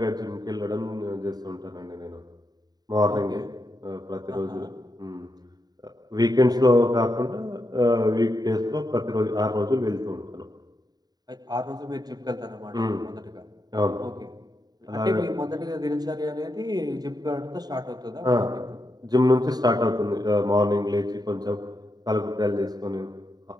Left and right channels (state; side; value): late; left; 0.19 ms